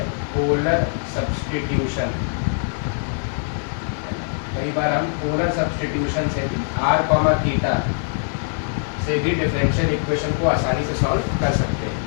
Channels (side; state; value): right; silent; 64 dB below the other